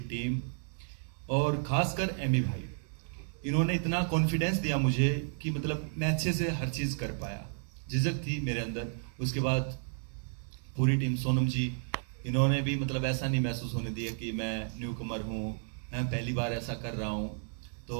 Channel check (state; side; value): silent; left; digital silence